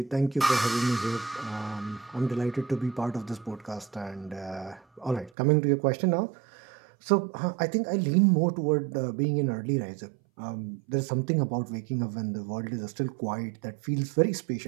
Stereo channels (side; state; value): left; drops out; at 5.3 s